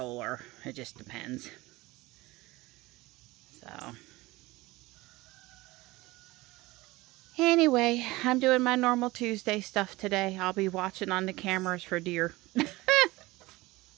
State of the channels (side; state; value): left; quieter; 20.4 dB